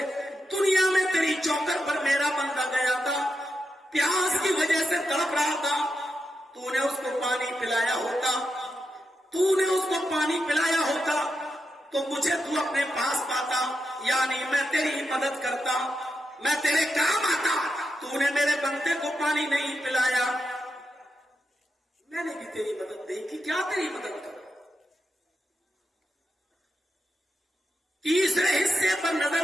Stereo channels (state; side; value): normal; both; correlation 0.87